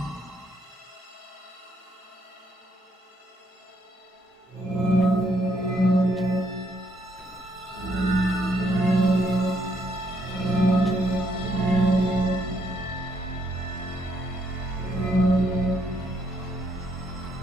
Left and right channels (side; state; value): both; normal; correlation 0.72